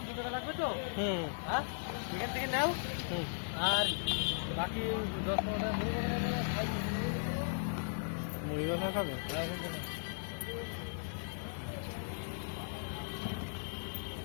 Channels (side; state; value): right; silent; digital silence